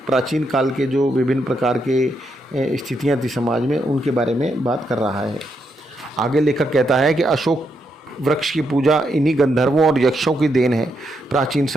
प्राचीन काल के जो विभिन्न प्रकार के स्थितियाँ थी समाज में, उनके बारे में बात कर रहा है। आगे लेखक कहता है कि अशोक वृक्ष की पूजा इन्हीं गंधर्वों और यक्षों की देन है। प्राचीन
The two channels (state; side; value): normal; both; correlation 0.80